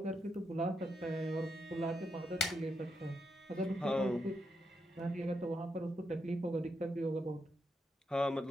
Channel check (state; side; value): normal; both; correlation 0.81